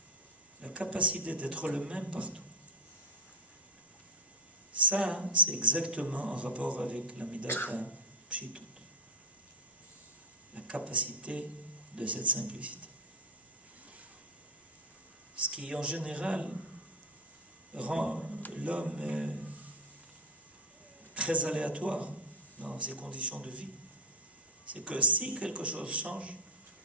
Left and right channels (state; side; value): normal; both; correlation 0.06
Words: la capacité d'être le même partout. Ça, c'est exactement en rapport avec la Midat HaPshitut, la capacité de cette simplicité. Ce qui, en général, rend l'homme très aléatoire dans ses conditions de vie, c'est que si quelque chose change,